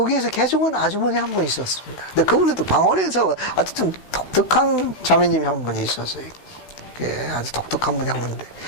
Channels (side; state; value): right; late; 16 ms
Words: 개종한 아주머니 한 분 있었습니다. 근데 그분도 방언에서 아주 좀 독특한 자매님이 한 분이 있었어요. 아주 독특한 분이 한 분인데